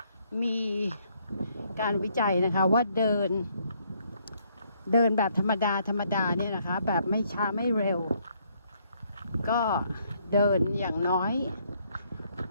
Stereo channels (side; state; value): both; inverted; correlation -0.70